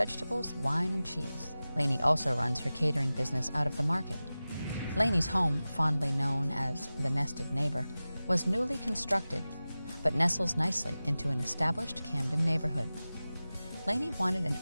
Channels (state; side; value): inverted; both; correlation -0.96